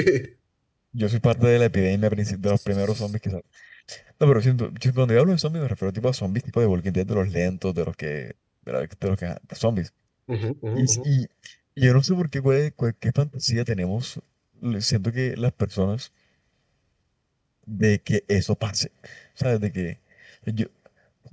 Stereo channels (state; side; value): identical; both; correlation 1.00